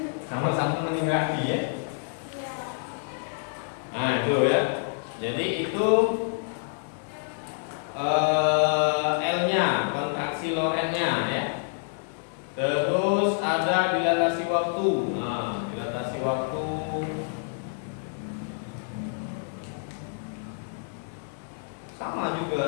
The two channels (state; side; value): silent; right; digital silence